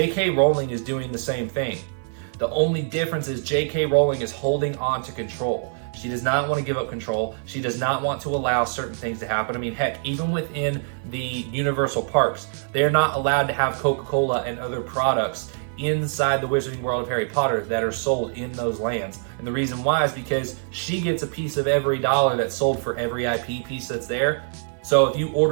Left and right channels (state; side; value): silent; left; 55 dB below the other